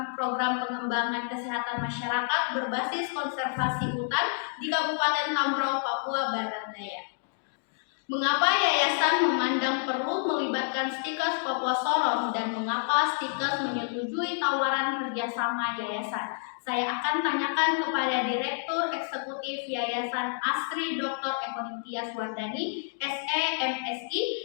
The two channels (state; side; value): silent; right; digital silence